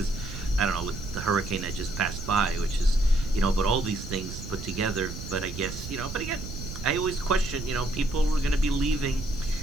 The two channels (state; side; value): noise; right; rumble, 9 dB below the sound